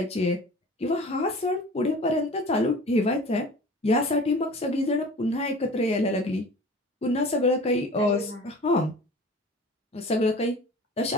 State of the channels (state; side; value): normal; both; correlation 0.41